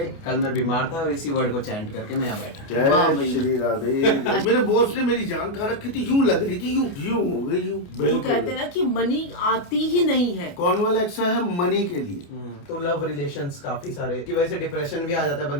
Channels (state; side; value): late; right; 29 ms